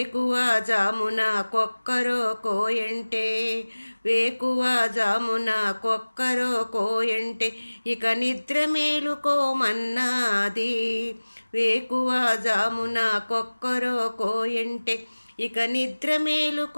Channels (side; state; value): both; inverted; correlation -1.00